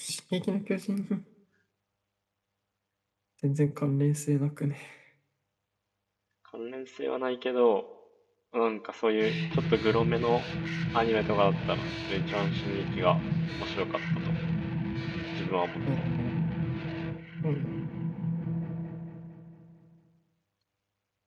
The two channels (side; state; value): both; identical; correlation 1.00